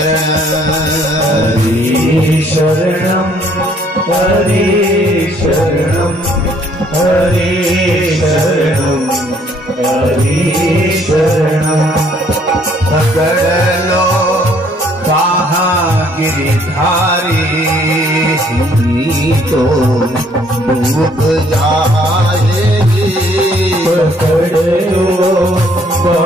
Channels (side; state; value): both; normal; correlation 0.63